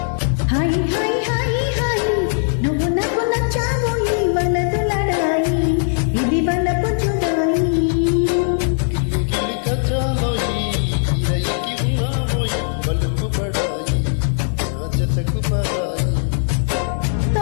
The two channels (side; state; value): right; silent; 66 dB below the other